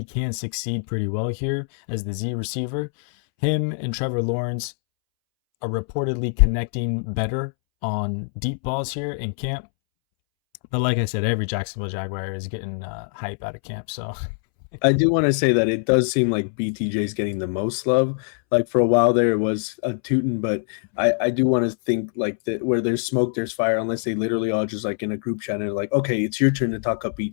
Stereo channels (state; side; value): silent; right; 63 dB below the other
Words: can succeed pretty well here as the Z receiver. Him and Trevor Lawrence are reportedly connecting better on deep balls here in camp. But like I said, every Jacksonville Jaguar is getting hype out of camp. So I do want to say that it does seem like BTJ is getting the most love. Like for a while there, it was a Tuten, but I do want to think like that where there's smoke, there's fire. Unless they literally all just like in a group chat and like, okay, it's your turn to talk up